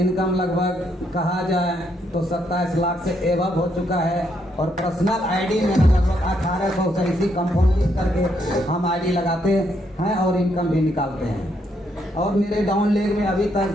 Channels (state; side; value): normal; both; correlation 0.75